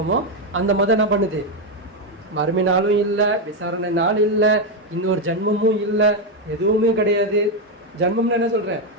அந்த மதம் என்ன பண்ணுது, மறுமை நாளும் இல்லை, விசாரணை நாள் இல்லை, இன்னொரு ஜன்மமும் இல்லை, எதுவுமே கிடையாது. ஜன்மம்னு என்ன சொல்றேன்,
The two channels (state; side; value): normal; both; correlation 0.05